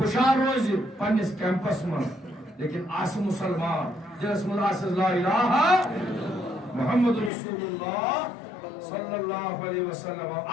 روزی پنس کیمپس من لیکن آس مسلمان جس من آس لا الہ محمد رسول اللہ صلی اللہ علیہ وسلم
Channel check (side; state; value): right; drops out; at 7.3 s